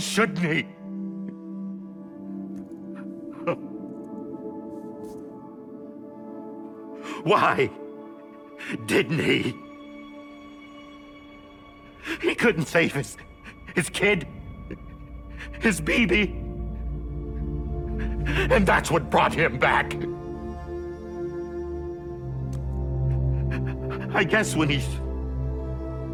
he? Why didn't he? He couldn't save his kid, his baby. And that's what brought him back. I guess when he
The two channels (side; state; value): both; identical; correlation 1.00